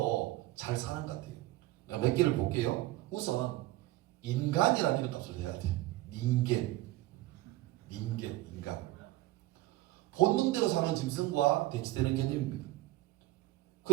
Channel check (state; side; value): quieter; left; 17.3 dB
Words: 잘 사는 것 같아요. 몇 개를 볼게요. 우선 인간이라는 이름값을 해야 돼요. 인간. 본능대로 사는 짐승과 대치되는 개념입니다.